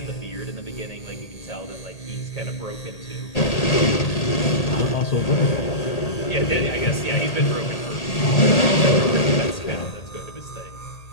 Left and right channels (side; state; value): right; late; 1.8 ms